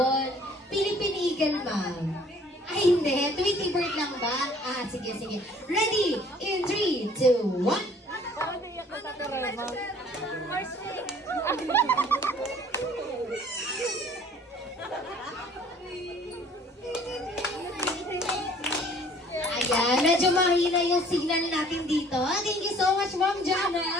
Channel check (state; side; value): normal; both; correlation 0.55